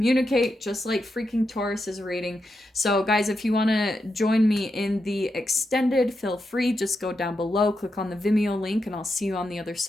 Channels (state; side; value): normal; both; correlation 0.86